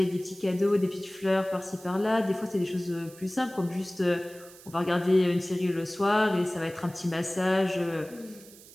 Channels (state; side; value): noise; right; hiss, 21 dB below the sound